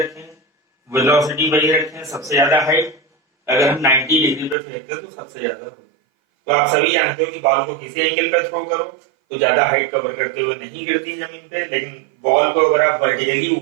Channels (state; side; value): drops out; left; at 4.5 s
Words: वेलोसिटी वही रखें, सबसे ज्यादा हाइट अगर हम 90 डिग्री पे फेंकते तो सबसे ज्यादा होगा। तो आप सभी जानते हो कि बॉल को किसी एंगल पे थ्रो करो तो ज्यादा हाइट कवर करते हुए नहीं गिरती जमीन पे, लेकिन बॉल को अगर आप वर्टिकली